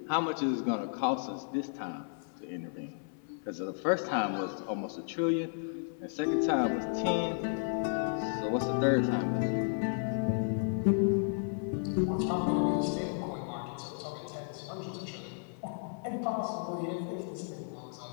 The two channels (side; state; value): right; silent; 56 dB below the other